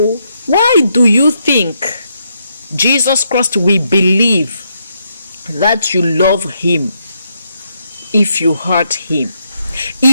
why do you think Jesus Christ will believe that you love him if you hurt him,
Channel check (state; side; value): inverted; both; correlation -0.78